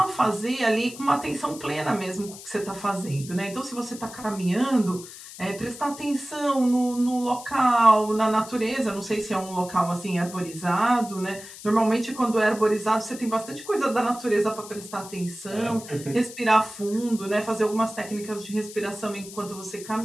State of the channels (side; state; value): left; noise; hiss, 15 dB below the sound